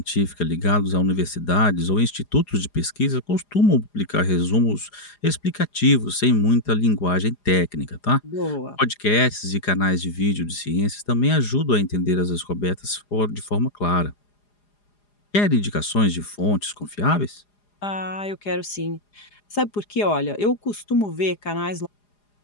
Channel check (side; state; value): right; late; 4.9 ms